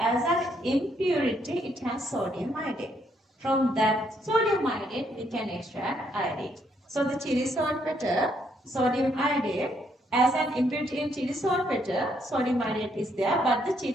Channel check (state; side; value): normal; both; correlation 0.73